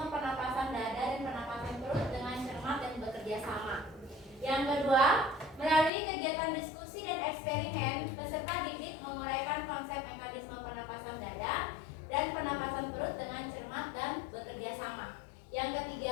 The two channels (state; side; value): drops out; right; at 5.9 s